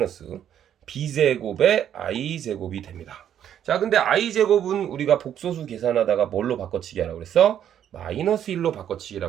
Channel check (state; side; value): quieter; left; 9.9 dB